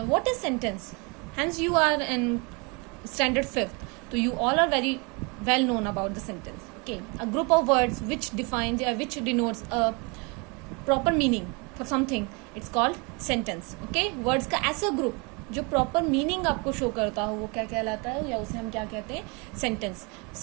what is sentence? Hence you are in standard 5th. So you all are very well known about the sentence. Okay, a group of words which defines which denotes a proper meaning for something, it's called sentence. Okay, words का ऐसा group जो proper meaning आपको show करता हो वो क्या कहलाता है, या उसे हम क्या कहते हैं, सेंटेंस.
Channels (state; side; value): quieter; left; 30.0 dB